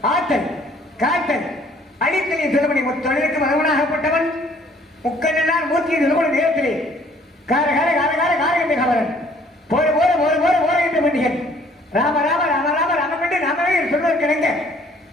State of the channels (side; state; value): both; normal; correlation 0.59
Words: ஆத்தல், காத்தல், அடித்தலின் சிறுவனை தொழிலுக்கு மகவனாகப்பட்டவன் முக்கண்ணனார் மூர்த்தியின் நிறுவன நேரத்திலே காரகார காரகார காரகண்ட கவரன் போற போற போற போற போற என்று பண்டிகன் ராம ராம ராம ராம ராம என்று நாமவே சொல்வதற்கிணங்க